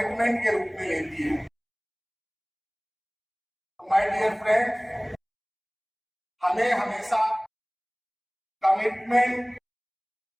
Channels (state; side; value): identical; both; correlation 1.00